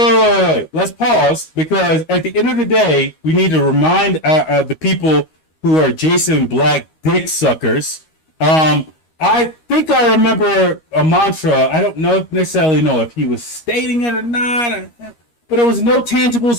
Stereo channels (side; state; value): right; late; 13 ms